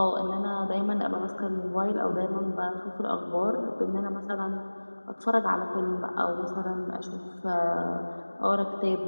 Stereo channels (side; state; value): both; inverted; correlation -1.00